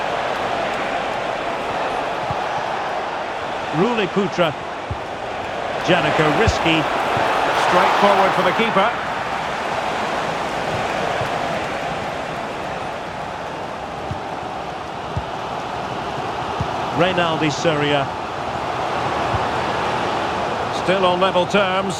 Ruli Putra. Janiko risky. Straight forward for the keeper. Reynaldi Soria. Still on level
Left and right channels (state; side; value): identical; both; correlation 1.00